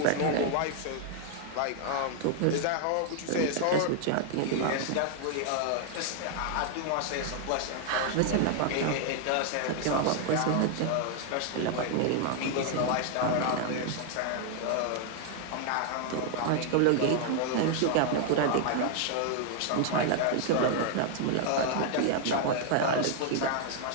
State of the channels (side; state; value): both; different; correlation 0.00